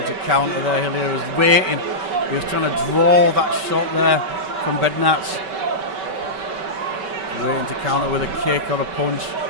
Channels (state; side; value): late; left; 5.2 ms